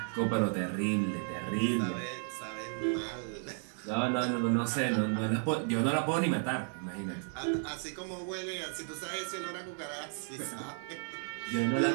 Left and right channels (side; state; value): left; silent; 55 dB below the other